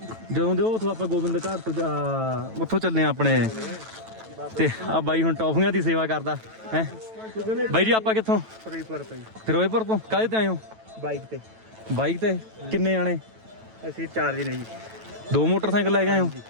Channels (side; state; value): left; late; 9.1 ms